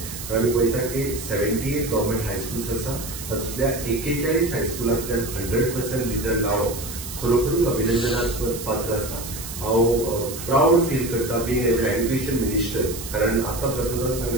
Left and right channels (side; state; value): right; noise; hiss, 10 dB below the sound